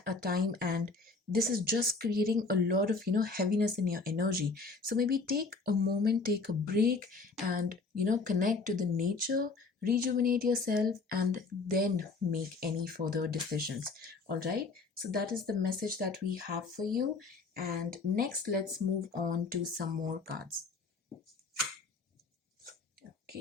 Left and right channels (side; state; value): right; quieter; 4.0 dB